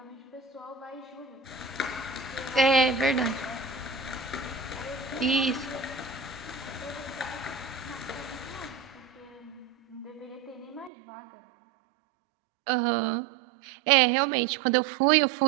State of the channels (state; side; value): drops out; left; at 10.9 s